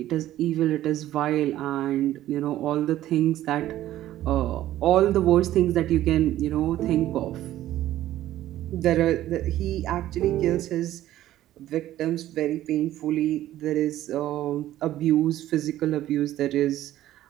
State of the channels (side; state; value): left; quieter; 13.7 dB